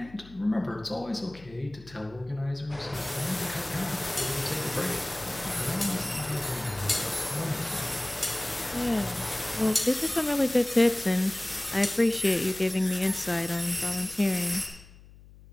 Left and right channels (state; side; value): noise; left; hum, 21 dB below the sound